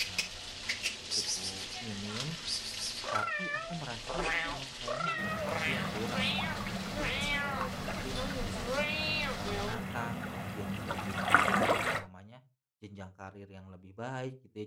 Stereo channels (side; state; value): both; identical; correlation 1.00